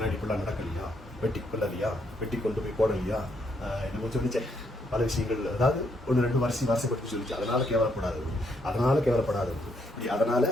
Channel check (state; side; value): normal; both; correlation 0.74